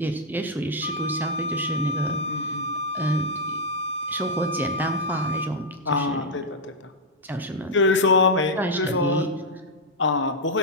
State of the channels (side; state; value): both; normal; correlation -0.03